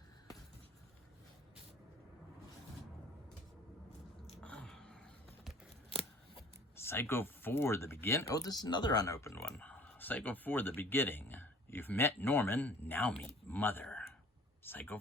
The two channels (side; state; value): both; normal; correlation 0.49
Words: Psycho 4, The Beginning. Oh, this is another unopened one. Psycho 4, The Beginning. You've met Norman, now meet Mother. Psycho